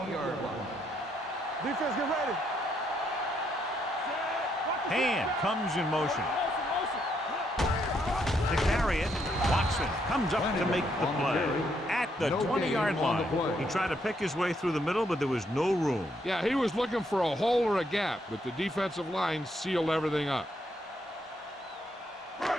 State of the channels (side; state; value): both; normal; correlation 0.74